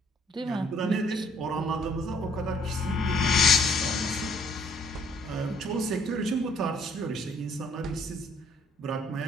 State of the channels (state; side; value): normal; both; correlation 0.64